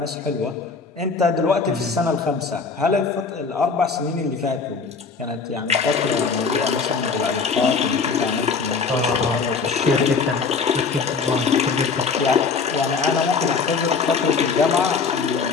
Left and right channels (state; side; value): quieter; right; 5.1 dB